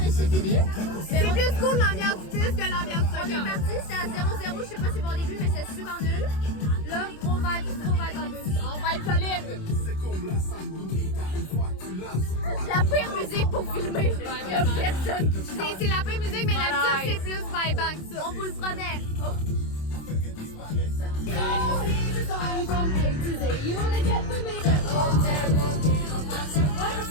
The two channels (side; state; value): right; late; 27 ms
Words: c'est fini? C'est plus cool l'ambiance du bus que l'ambiance On soccer. est parti, c'était à 0-0, je sais pas si bon au début, mais c'était super nul. Là, gros vibe dans le bus. On va être solide. La pire musique pour filmer. Il y a personne qui chante. C'est la pire musique, mais l'habitude, c'est plus vibant que ça. On vous le promet.